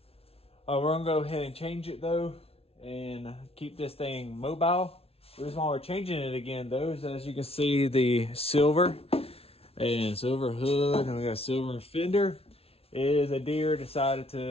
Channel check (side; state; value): right; late; 0.29 ms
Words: we're gonna go ahead and change it though and keep this thing mobile. The reason why we're changing it again though is, as you can see, the silver and silver hood, and we got a silver fender, is a deer decided